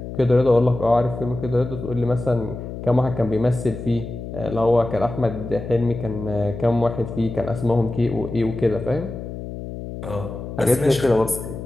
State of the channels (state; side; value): noise; left; hum, 9 dB below the sound